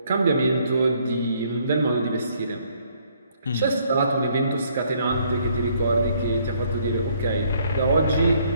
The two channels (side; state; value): both; inverted; correlation -0.66